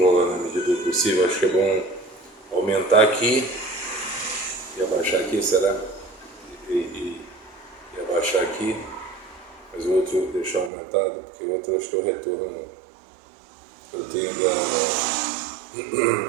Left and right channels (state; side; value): drops out; left; at 10.7 s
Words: na medida do possível. Acho que é bom aumentar aqui e abaixar aqui, será? E abaixar aqui, mas o outro deixar aumentado, porque o outro acho que é o retorno que eu tenho da...